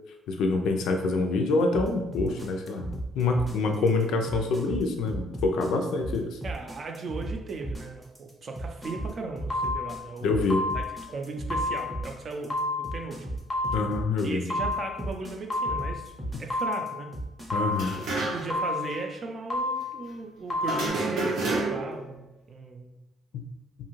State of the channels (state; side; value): normal; both; correlation 0.59